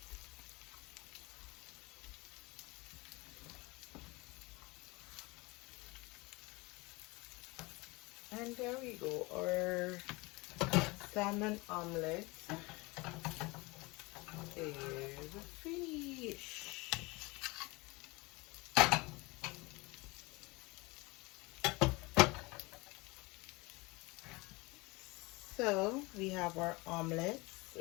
And there we go, our salmon omelette is finished. So we have our omelets,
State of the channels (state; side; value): quieter; right; 24.5 dB